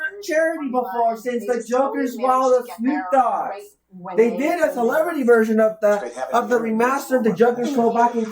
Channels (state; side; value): identical; both; correlation 1.00